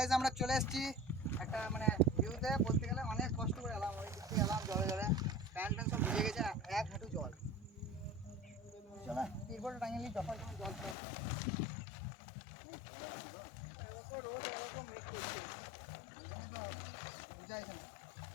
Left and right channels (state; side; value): drops out; right; at 11.0 s